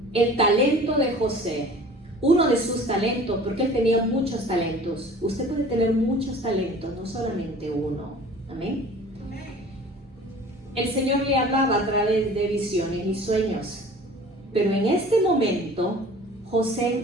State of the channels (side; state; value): both; normal; correlation 0.45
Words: El talento de José, uno de sus talentos, porque él tenía muchos talentos. Usted puede tener muchos talentos, no solamente uno. Amén. El Señor le hablaba a través de visiones y sueños. Pero en este momento,